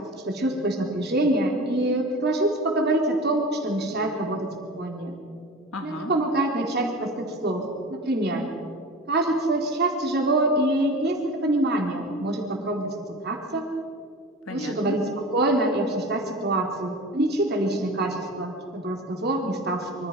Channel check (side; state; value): both; normal; correlation 0.35